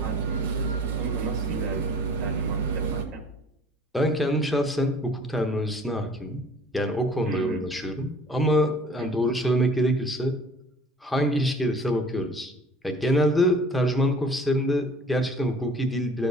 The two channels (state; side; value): normal; both; correlation 0.50